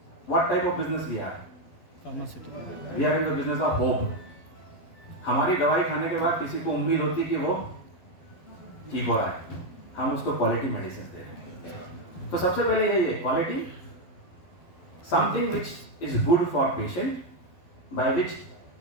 what type of business we are. Pharmaceutical. We are in the business of hope. हमारी दवाई खाने के बाद किसी को उम्मीद होती कि वो ठीक हो रहा है, हम उसको क्वालिटी मेडिसिन दे रहे हैं। तो सबसे पहले यही है quality, something which is good for patient, by which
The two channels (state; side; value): late; right; 12 ms